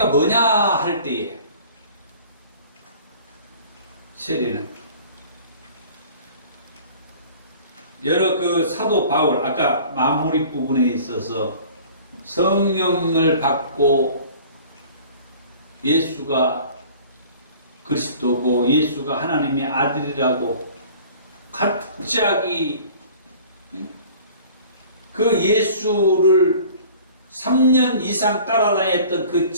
뭐냐 할 때에 세례는 여러 그 사도 바울 아까 마무리 부분에 있어서 성령을 받고 예수가 그리스도고 예수가 하나님의 아들이라고 갑자기 그 예수를 3년 이상 따라다녔던 그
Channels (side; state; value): both; inverted; correlation -0.47